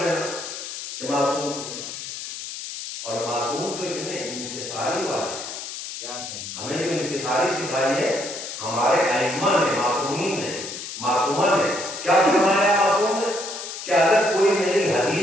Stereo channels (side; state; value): left; noise; hiss, 8 dB below the sound